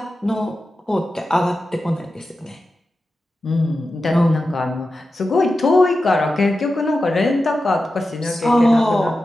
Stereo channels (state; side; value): normal; both; correlation 0.92